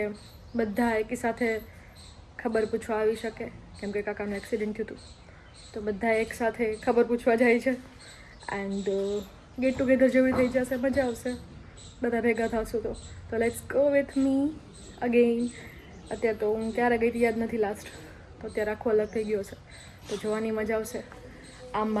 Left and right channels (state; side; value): identical; both; correlation 1.00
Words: બધા એકી સાથે ખબર પૂછવા આવી શકે, કેમ કે કાકાનું એક્સિડન્ટ થયું હતું. તો બધા એક સાથે ખબર પૂછવા જાય છે. એન્ડ ગેટ ટુગેધર જેવી થઈ જશે, મજા આવશે બધા ભેગા થશું તો let's go with me again. અત્યારે તો હું ક્યારે ગઈ યાદ નથી લાસ્ટ, તો અત્યારે આખો અલગ થઈ ગયો છે. તો જોવાની મજા આવશે.